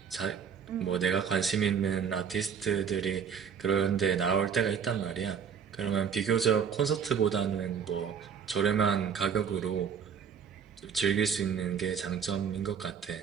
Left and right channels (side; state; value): left; quieter; 7.2 dB